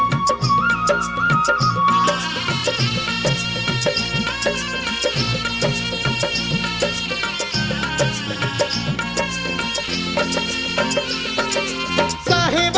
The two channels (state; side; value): identical; both; correlation 1.00